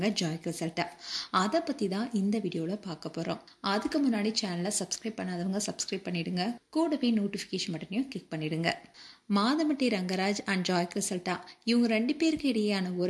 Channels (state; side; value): identical; both; correlation 1.00